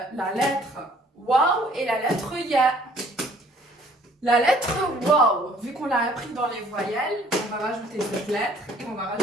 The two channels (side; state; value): both; normal; correlation 0.58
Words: lettre Waouh et la lettre Ya. La lettre Waouh, vu qu'on l'a appris dans les voyelles, on va rajouter cette lettre et on va